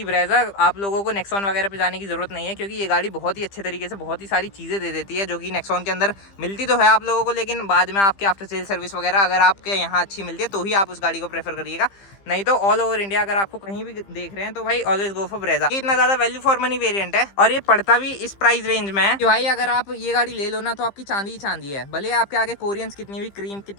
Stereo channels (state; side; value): late; right; 15 ms